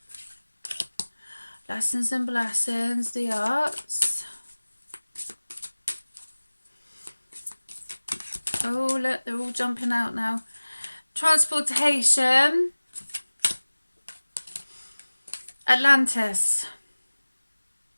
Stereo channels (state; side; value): inverted; both; correlation -1.00